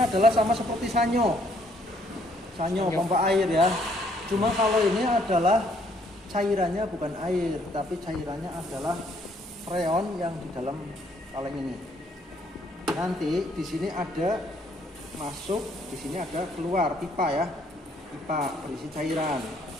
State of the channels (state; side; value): normal; both; correlation 0.66